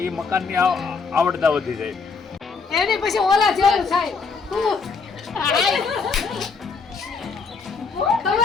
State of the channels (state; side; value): quieter; right; 5.0 dB